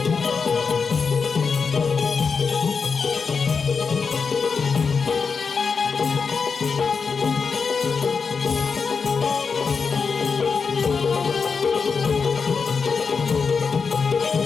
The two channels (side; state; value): right; quieter; 5.4 dB